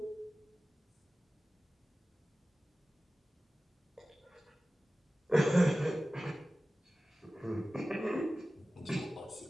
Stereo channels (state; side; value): normal; both; correlation 0.96